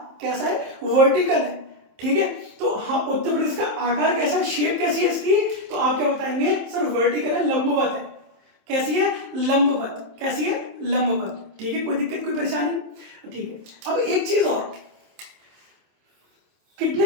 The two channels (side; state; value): left; late; 27 ms